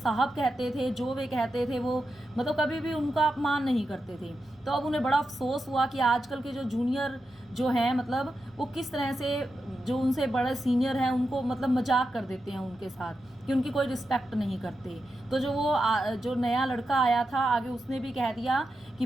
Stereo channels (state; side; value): normal; both; correlation 0.88